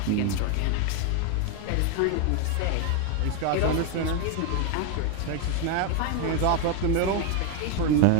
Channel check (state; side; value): different; both; correlation 0.01